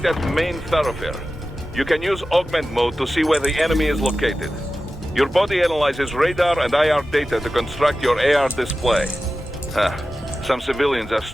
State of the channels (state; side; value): normal; both; correlation 0.94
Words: that main thoroughfare. You can use augment mode to see where the enemy is located. Your body analyzes radar and IR data to construct your AR display. Some civilians are